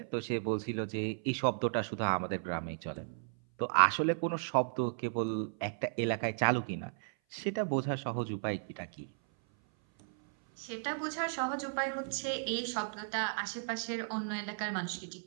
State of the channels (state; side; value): silent; left; 55 dB below the other